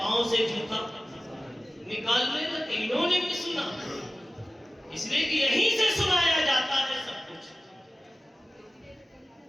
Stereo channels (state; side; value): normal; both; correlation 0.96